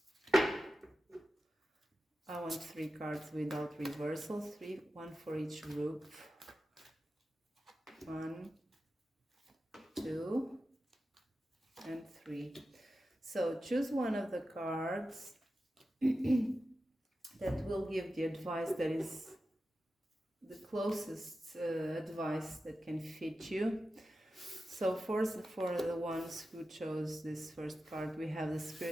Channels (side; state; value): both; normal; correlation 0.92